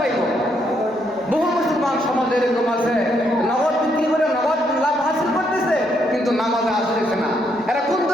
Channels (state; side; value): normal; both; correlation 0.74